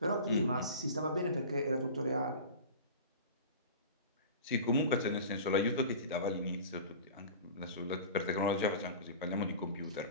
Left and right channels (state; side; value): inverted; both; correlation -0.35